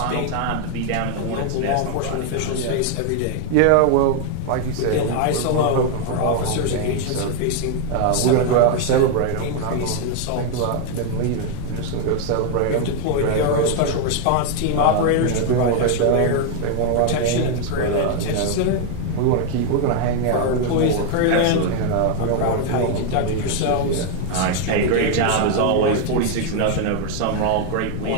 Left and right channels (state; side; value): different; both; correlation 0.00